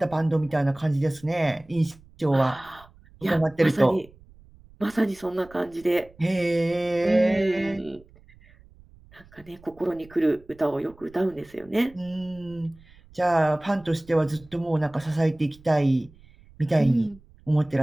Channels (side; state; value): right; noise; rumble, 25 dB below the sound